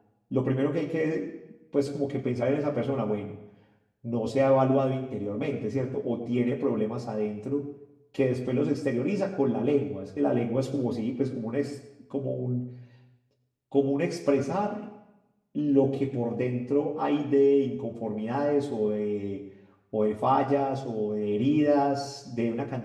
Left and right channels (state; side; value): identical; both; correlation 1.00